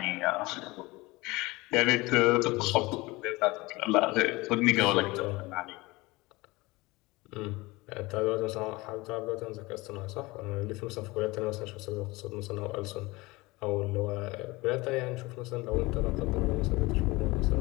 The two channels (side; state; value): right; quieter; 22.2 dB